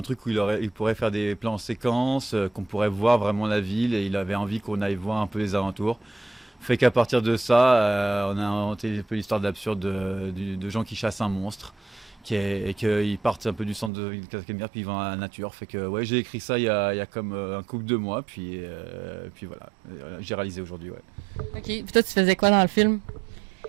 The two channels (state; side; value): drops out; left; at 13.9 s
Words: truc où il pourrait faire des plans en séquence, qu'on pourrait voir vraiment la ville, et il avait envie qu'on aille voir un peu les alentours. Fait qu'à partir de ça, on a inventé un peu l'histoire d'absurde de gens qui chassent un monstre, et qu'ils partent un peu du centre de Casimir, puis ils vont à la nature. Fait que ouais, j'ai écrit ça il y a comme un couple de mois, puis voilà, j'ai réalisé aujourd'hui, ouais. OK. Puis toi, tu faisais quoi dans le film?